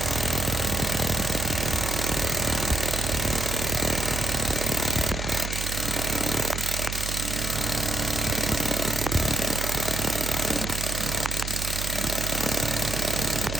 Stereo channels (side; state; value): right; noise; hum, 4 dB below the sound